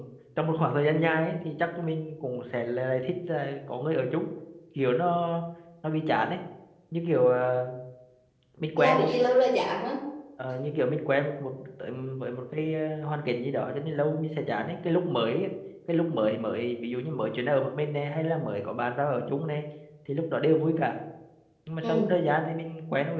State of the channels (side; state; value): both; identical; correlation 1.00